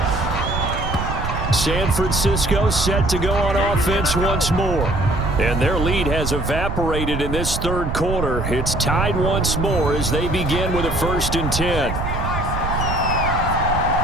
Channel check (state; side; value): noise; right; rumble, 3 dB below the sound